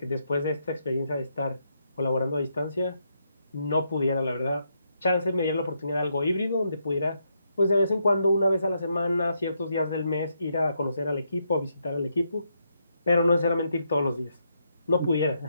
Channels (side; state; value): both; inverted; correlation -0.78